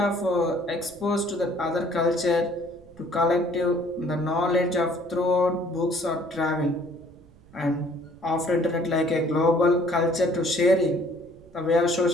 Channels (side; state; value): right; noise; rumble, 25 dB below the sound